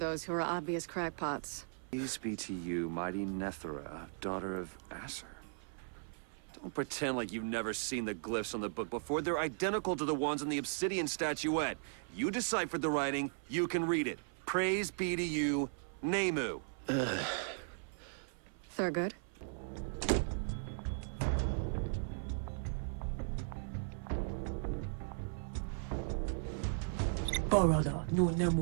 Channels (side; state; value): left; silent; 53 dB below the other